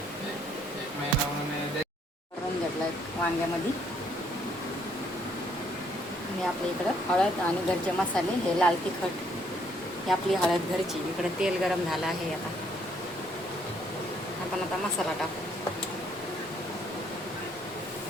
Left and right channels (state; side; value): normal; both; correlation 0.68